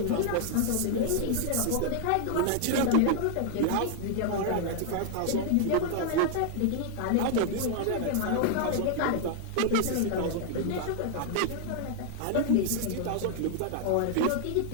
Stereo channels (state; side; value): different; both; correlation -0.01